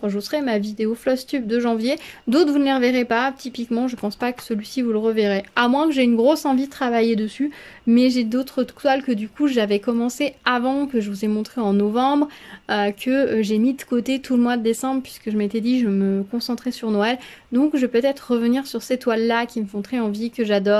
je vous ferai ma vidéo Flosstube de janvier. D'autres, vous ne les reverrez pas. Typiquement, je pense pas que celui-ci, vous le reverrez. À moins que j'ai une grosse envie de travailler dessus. Mais j'ai d'autres toiles que du coup, j'avais commencé avant, que je vous ai montré en novembre, que j'ai mis de côté tout le mois de décembre puisque je m'étais dit je me concentrais sur Noël. Donc, je vais peut-être revenir sur ces toiles-là qui me font très envie, que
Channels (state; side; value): identical; both; correlation 1.00